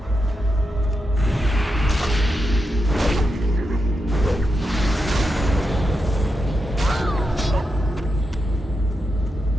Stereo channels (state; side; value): normal; both; correlation 0.86